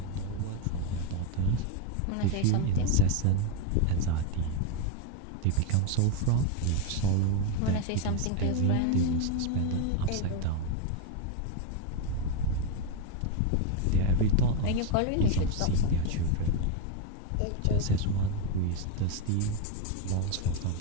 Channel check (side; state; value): both; different; correlation 0.02